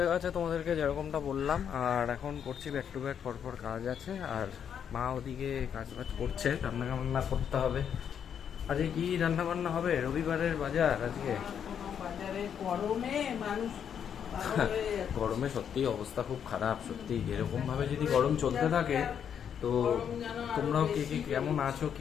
গেছে, তোমাদেরকে যেরকমটা বললাম। আর এখন করছি ব্যাক টু ব্যাক, পরপর কাজ আছে। আর মা ওদিকে কাজ বাজ করছে, রান্না বান্না করতে হবে। আজকে কি রান্না বান্না হবে? রবিবারের বাজার আজকে। বাজারে গরমে মানুষ গরমে সত্যি অবস্থা খুব খারাপ, সত্যি। এরকম ভাবে যদি গরম চলতে থাকে, তো তোমরাও কে কে কেমন আছো,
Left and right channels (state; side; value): quieter; right; 8.2 dB